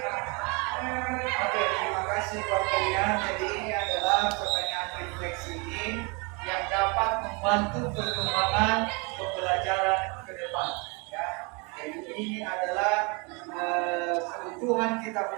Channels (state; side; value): quieter; left; 31.0 dB